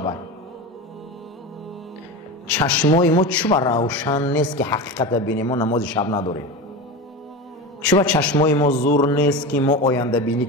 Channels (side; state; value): both; normal; correlation 0.25